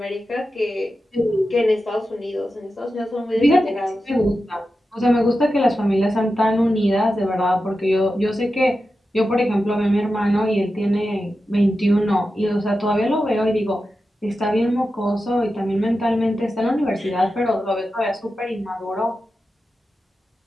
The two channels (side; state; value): both; normal; correlation 0.91